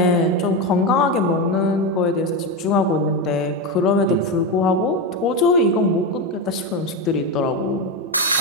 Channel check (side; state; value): both; normal; correlation 0.13